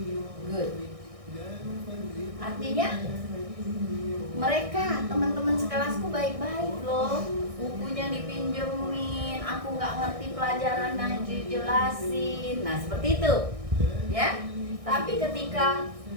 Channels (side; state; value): left; late; 1.6 ms